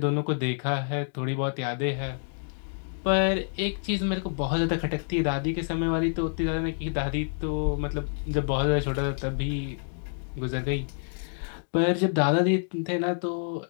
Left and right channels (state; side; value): silent; right; digital silence